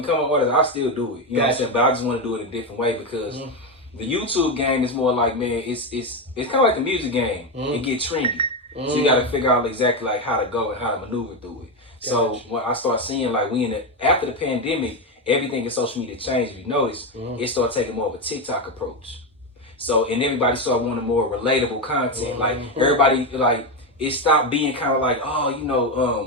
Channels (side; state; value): both; normal; correlation 0.11